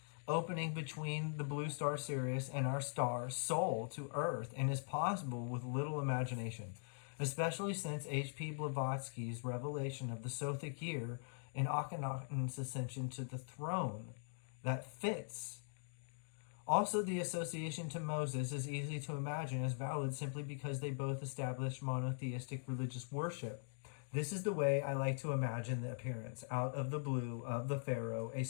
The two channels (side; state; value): right; silent; digital silence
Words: opening between the blue star Sirius and our star Sol to Earth, and is possible with little imagination, especially since H.P. Blavatsky's revelation of the Sothic Year and Akhenaten's ascension to the throne. That fits. Also, the association to Moses is easy to imagine as valid simply because they both established monotheistic religious worship. This is the way I like to imagine the appearance out of the blue of the Pharaoh, a